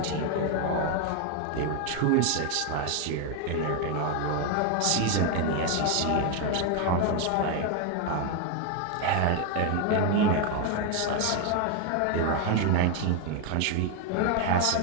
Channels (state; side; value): different; both; correlation 0.01